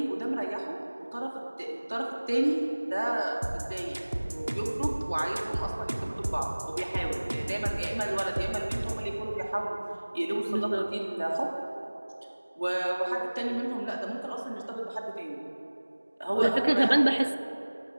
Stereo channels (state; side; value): inverted; both; correlation -1.00